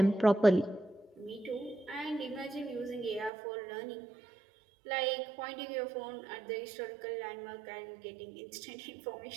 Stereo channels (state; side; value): drops out; left; at 3.3 s